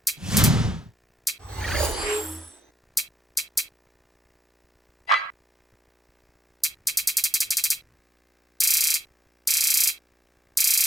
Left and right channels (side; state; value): both; normal; correlation 0.77